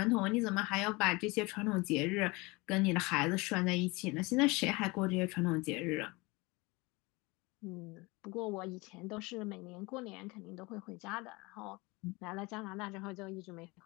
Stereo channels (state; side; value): quieter; right; 24.7 dB